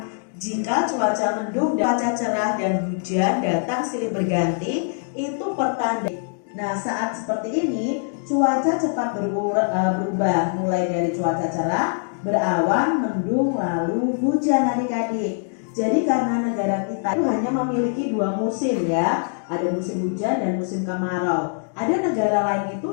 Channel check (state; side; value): silent; right; digital silence